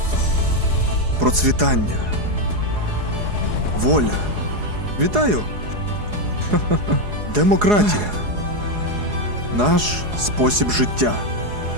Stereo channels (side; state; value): left; late; 4.8 ms